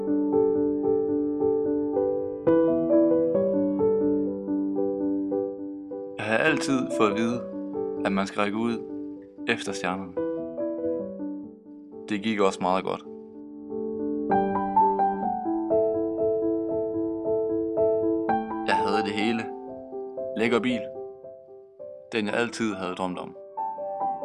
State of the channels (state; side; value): identical; both; correlation 1.00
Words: har altid fået at vide, at man skal række ud efter stjernerne. Det gik også meget godt. Jeg havde det hele. Lækker bil. Den jeg altid havde drømt om.